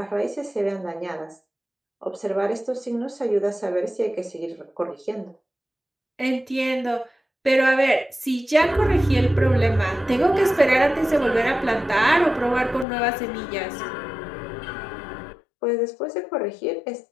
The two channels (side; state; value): right; drops out; at 12.9 s